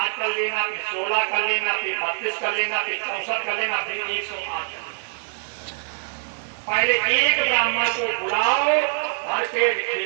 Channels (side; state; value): left; silent; 62 dB below the other